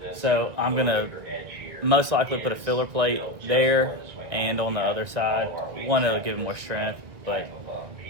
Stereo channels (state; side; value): late; left; 1.7 ms